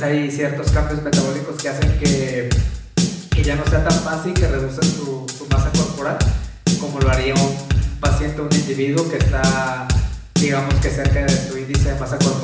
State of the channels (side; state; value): both; identical; correlation 1.00